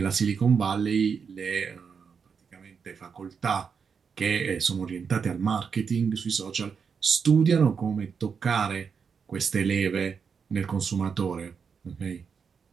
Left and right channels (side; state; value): left; quieter; 6.2 dB